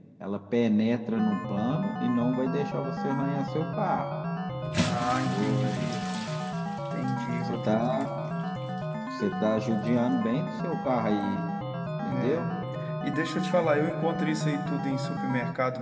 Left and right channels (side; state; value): both; identical; correlation 1.00